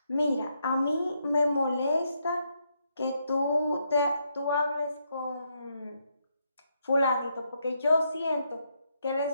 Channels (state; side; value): inverted; both; correlation -0.78